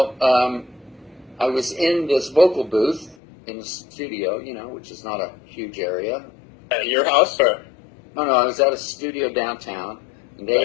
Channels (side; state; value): right; drops out; at 3.2 s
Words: I was in this vocal booth in the studio, which is not a huge area. At your house, or? No, I was at a studio downtown. And